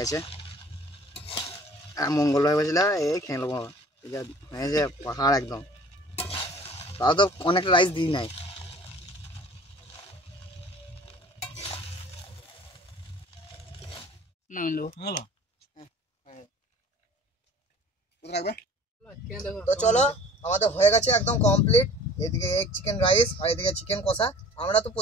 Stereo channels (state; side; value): normal; both; correlation 0.47